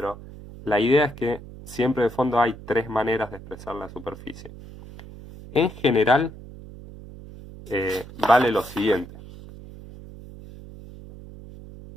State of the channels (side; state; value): right; noise; hum, 16 dB below the sound